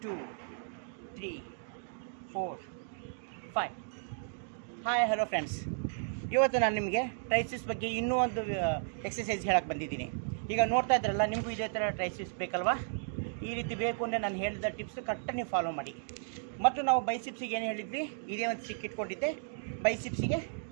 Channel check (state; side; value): silent; left; digital silence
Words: 2 3 4 5. Hi hello friends, ಇವತ್ತು ನಾನು ನಿಮಗೆ ಟ್ರೈಸಿಸ್ ಬಗ್ಗೆ ಇನ್ನೂ ಒಂದು ಎಕ್ಸಸೈಸ್ ಹೇಳಕ್ಕೆ ಬಂದಿದ್ದೀನಿ. ಈಗ ನೋಡ್ತಾ ಇದ್ರಲ್ಲ, ನಿಮಗೂ ಇದೇ ಥರ ಟ್ರೈಸಿಸ್ ಬೇಕಲ್ವಾ? ಈ ರೀತಿ ಬೇಕು ಅಂದರೆ ನಾನು ಹೇಳಿದ ಟಿಪ್ಸ್ ಕರೆಕ್ಟಾಗಿ ನೀವು ಫಾಲೋ ಮಾಡಿ. ಮತ್ತು ನಾವು ಬೈಸಿಪ್ಸಿಗೆ ಏನು ಹೇಳಿದ್ವಿ, ಇದೇ ಒಂದು ಸಿಕ್ ಇಟ್ಕೊಂಡಿದ್ದೆ, ಬೈಸಿಪ್ಸಿಗೆ